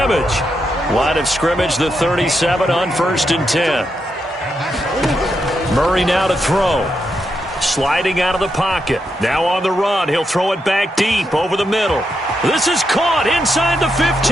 Line of scrimmage, the 37 on 1st and 10. Murray now to throw. Sliding out of the pocket. Now on the run. He'll throw it back deep over the middle. This is caught inside the 15.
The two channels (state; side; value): normal; both; correlation 0.83